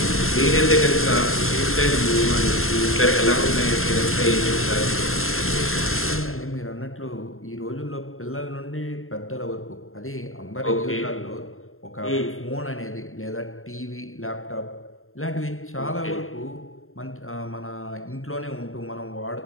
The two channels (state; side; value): late; right; 0.61 ms